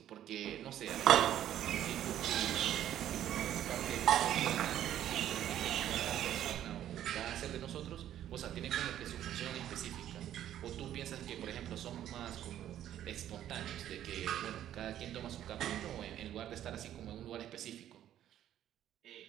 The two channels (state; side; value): quieter; left; 11.5 dB